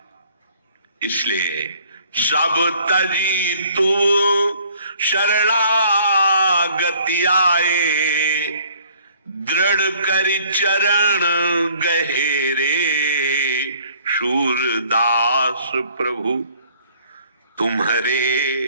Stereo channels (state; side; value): inverted; both; correlation -0.58